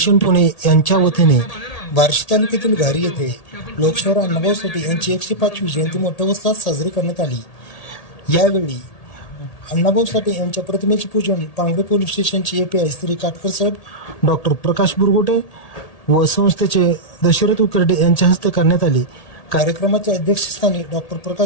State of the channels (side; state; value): right; late; 1.8 ms